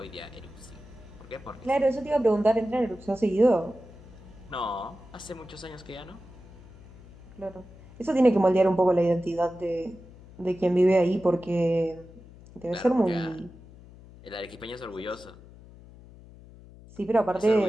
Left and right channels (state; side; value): noise; left; hum, 20 dB below the sound